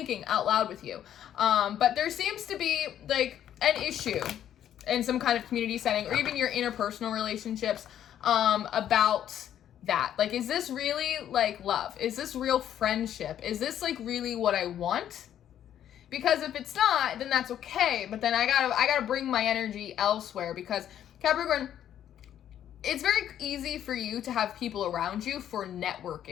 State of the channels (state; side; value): quieter; right; 10.6 dB